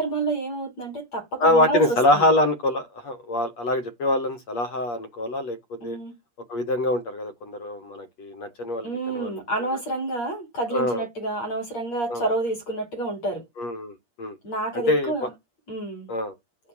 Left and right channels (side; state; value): right; late; 8.5 ms